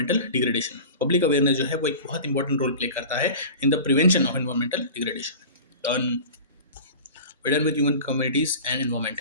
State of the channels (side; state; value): both; inverted; correlation -0.36